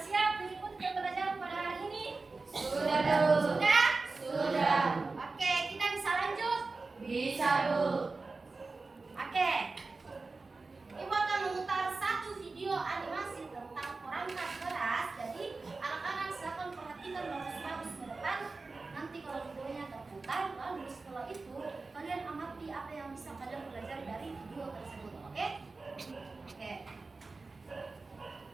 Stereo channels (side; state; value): left; quieter; 3.8 dB